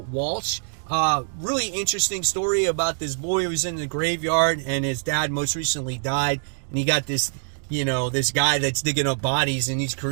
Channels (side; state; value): left; silent; digital silence